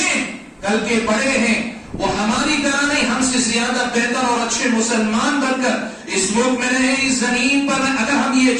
کل کے بڑے ہیں، وہ ہماری طرح نہیں، ہم سے زیادہ بہتر اور اچھے مسلمان بن کر اس ملک میں رہیں، اس زمین پر رہیں، اگر ہم یہ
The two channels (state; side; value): identical; both; correlation 1.00